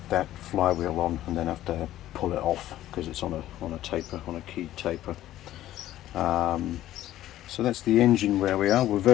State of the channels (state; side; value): quieter; right; 13.8 dB